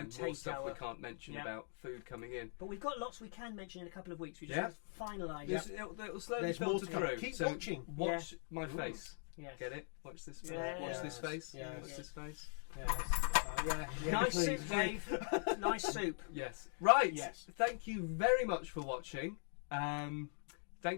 more stuff we can't mention about food coming in. But we've got lots we can mention in a couple of weeks. We just have to finalise. It'll slowly filter through. Keep watching. Watch my face. Yes. Get it? Watch this face. Watch this face. Watch this face. Nice soup, Dave. Nice soup. Yes. Right. Yes. Thank you very much for watching.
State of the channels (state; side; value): silent; right; 50 dB below the other